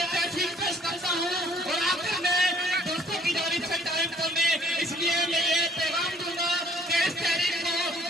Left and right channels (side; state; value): both; normal; correlation 0.59